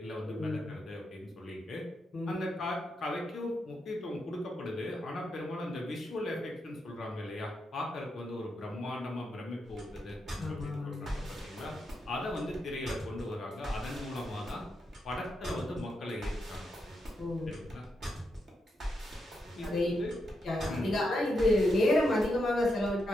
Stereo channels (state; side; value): normal; both; correlation 0.83